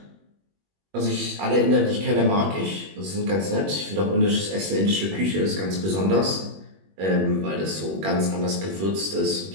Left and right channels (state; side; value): late; left; 21 ms